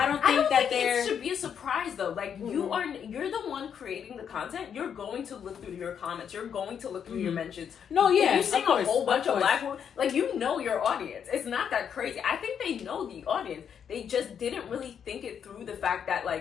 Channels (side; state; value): right; quieter; 7.9 dB